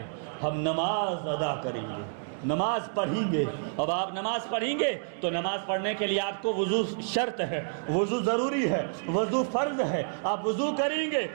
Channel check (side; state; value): left; silent; digital silence